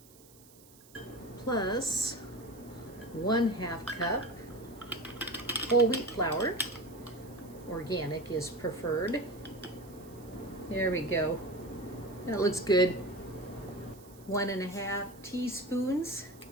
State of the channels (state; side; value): noise; right; hiss, 24 dB below the sound